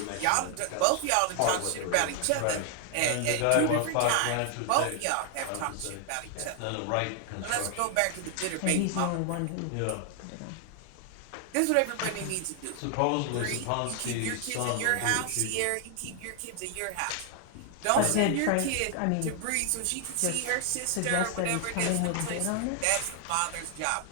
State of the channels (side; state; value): both; different; correlation 0.00